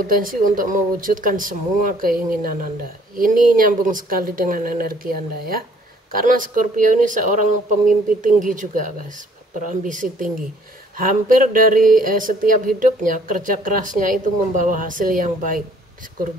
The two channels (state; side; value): normal; both; correlation 0.60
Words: untuk mewujudkan semua keinginan Anda. Ini nyambung sekali dengan energi Anda ya. Karena Scorpio ini seorang pemimpi tinggi juga guys, berambisi tinggi. Hampir dari setiap hidupnya, kerja kerasnya itu membawa hasil yang baik